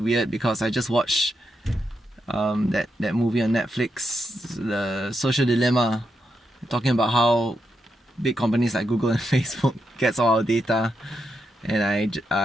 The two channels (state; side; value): normal; both; correlation 0.84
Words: because I just watched that movie on Netflix, The Social Dilemma, talking about how big companies like Google and Facebook gets all our data, and